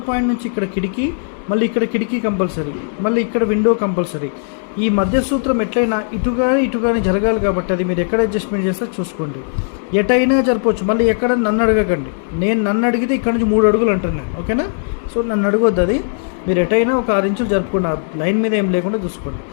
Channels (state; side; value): silent; right; digital silence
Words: పాయింట్ నుంచి ఇక్కడ కిటికీ, మళ్ళీ ఇక్కడ కిటికీ కంపల్సరీ, మళ్ళీ ఇక్కడ విండో కంపల్సరీ. ఈ మధ్య సూత్రం ఎట్లయినా ఇటుగానే జరగాలి కాబట్టి అది మీరు ఎక్కడ అడ్జస్ట్మెంట్ చేస్తారో చూసుకోండి. ఎటైనా జరపవచ్చు. మళ్ళీ ఎక్కడ నన్ను అడగకండి. నన్ను అడిగితే ఇక్కడ నుంచి 3 అడుగులు అంటాను నేను. ఓకేనా. సో నన్ను అడగొద్దు. అది మీరు ఎటైనా ఒక 6 ఇంచులు జరుపుకోండి. ఆ లైన్ మీద ఏం లేకుండా చూసుకోండి.